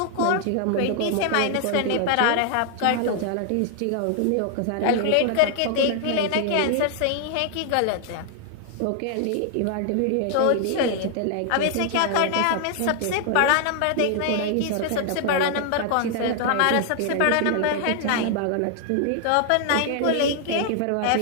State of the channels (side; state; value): both; different; correlation 0.00